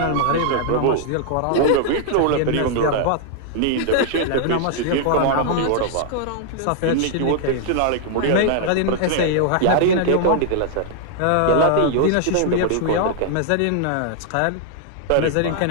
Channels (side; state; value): both; different; correlation -0.01